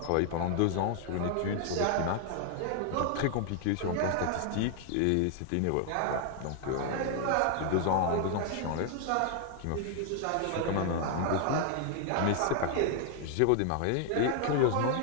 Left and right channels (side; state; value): both; different; correlation 0.00